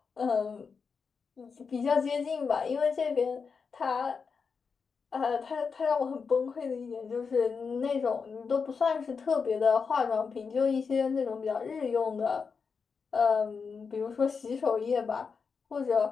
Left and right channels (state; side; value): quieter; right; 5.5 dB